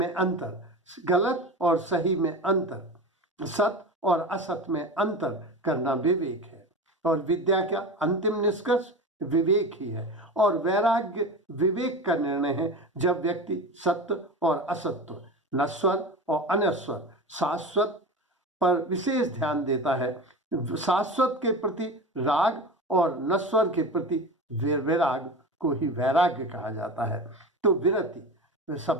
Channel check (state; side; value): normal; both; correlation 0.28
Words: अंतर, गलत और सही में अंतर, सत और असत में अंतर करना विवेक है। और विद्या का अंतिम निष्कर्ष विवेक ही है। और वैराग्य विवेक का निर्णय है जब व्यक्ति सत्य और असत्य, नश्वर और अनश्वर, शाश्वत पर विशेष ध्यान देता है। शाश्वत के प्रति राग और नश्वर के प्रति विराग को ही वैराग्य कहा जाता है। तो विरति